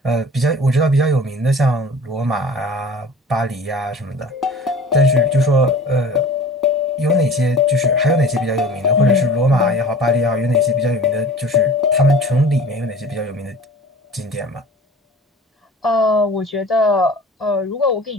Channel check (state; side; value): normal; both; correlation 0.42